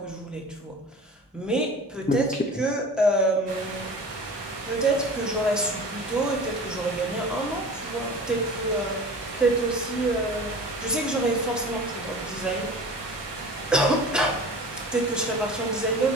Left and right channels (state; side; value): normal; both; correlation 0.38